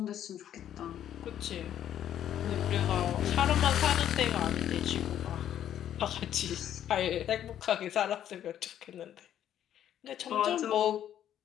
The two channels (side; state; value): right; quieter; 10.7 dB